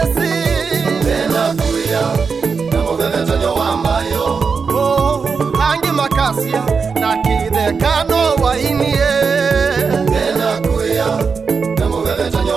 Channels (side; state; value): left; quieter; 5.3 dB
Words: Bena kuya, na muvevetanya wamayo. Wangi makasia na kidekano wainie. Bena kuya, na muvevetanya